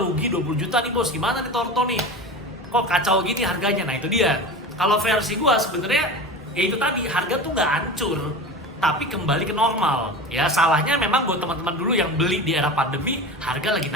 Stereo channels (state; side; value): normal; both; correlation 0.30